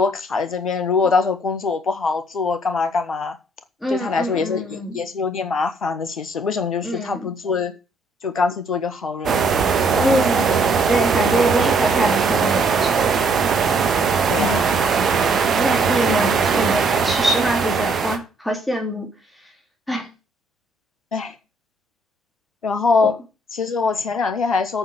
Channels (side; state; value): both; normal; correlation 0.66